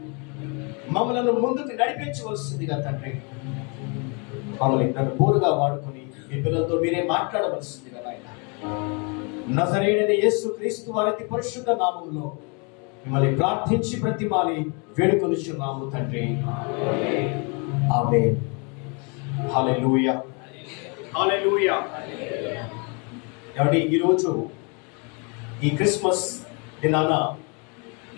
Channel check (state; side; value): quieter; right; 33.9 dB